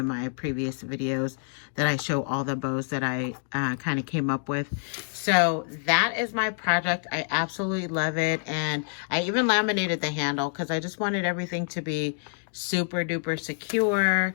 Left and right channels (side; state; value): right; silent; digital silence